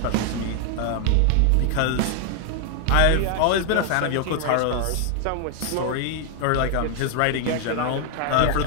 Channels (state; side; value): different; both; correlation 0.00